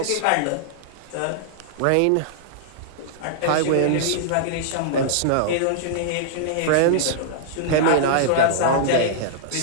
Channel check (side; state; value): both; different; correlation -0.01